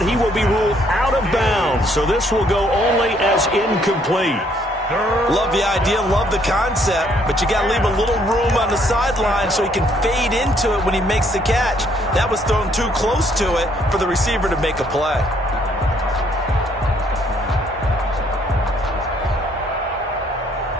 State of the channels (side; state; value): both; normal; correlation 0.67